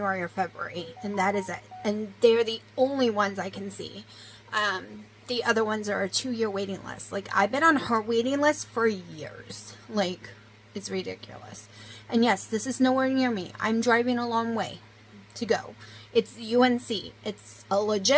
or February. And that is it. And they're the only ones I can see. The other ones are a 2-year waiting list. Like, I've been on her waiting list for years. Like, it's ridiculous. And yes, this is nowhere near me. I'm driving a long way to go. It's UNC. It's a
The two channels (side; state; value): both; identical; correlation 1.00